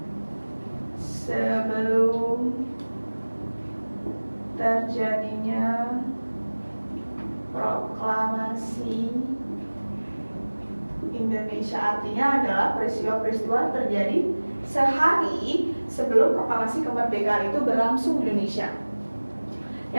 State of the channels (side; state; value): both; inverted; correlation -1.00